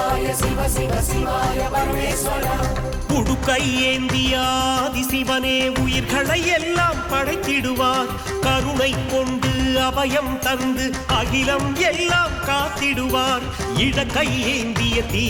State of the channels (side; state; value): both; identical; correlation 1.00